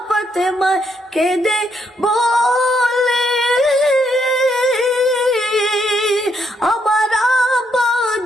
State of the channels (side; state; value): both; normal; correlation 0.75